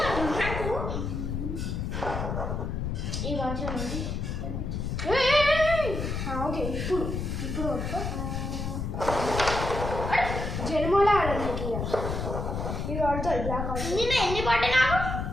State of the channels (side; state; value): left; noise; rumble, 3 dB below the sound